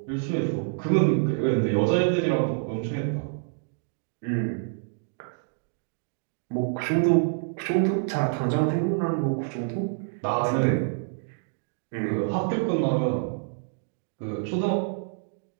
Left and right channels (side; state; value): left; silent; digital silence